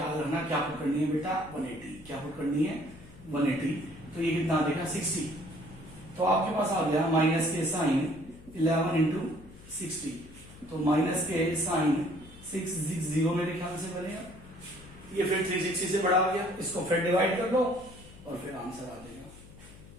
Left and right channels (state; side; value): noise; left; hum, 20 dB below the sound